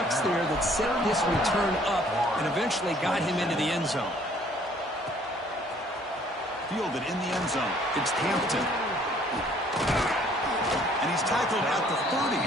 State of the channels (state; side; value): normal; both; correlation 0.59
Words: there that set this return up and eventually got him into the end zone. Fielded in the end zone. It's Hampton. And he's tackled at the 30,